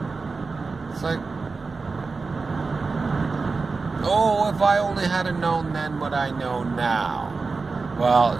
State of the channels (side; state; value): left; quieter; 4.2 dB